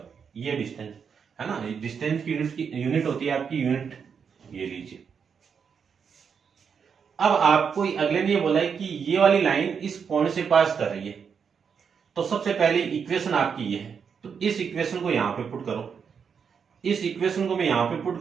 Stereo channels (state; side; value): quieter; left; 6.6 dB